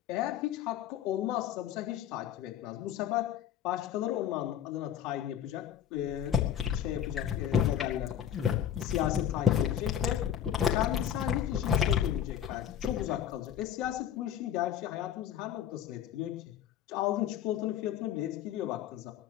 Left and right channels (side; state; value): right; quieter; 9.9 dB